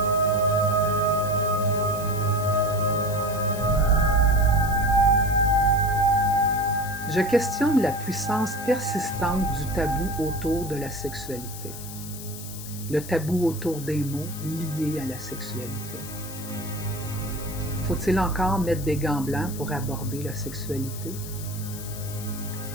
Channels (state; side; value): noise; left; hiss, 12 dB below the sound